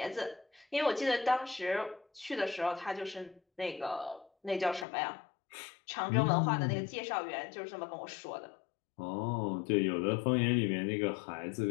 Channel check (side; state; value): right; drops out; at 4.9 s